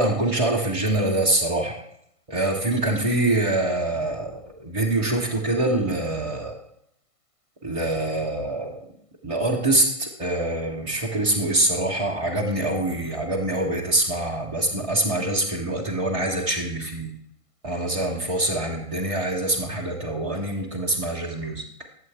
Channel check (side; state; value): left; late; 1.5 ms